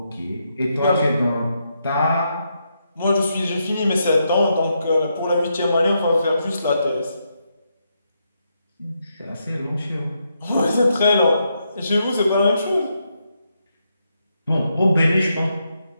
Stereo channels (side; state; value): both; inverted; correlation -0.81